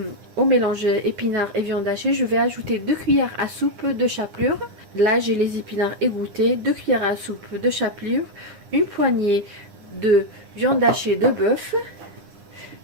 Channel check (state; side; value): late; left; 9.8 ms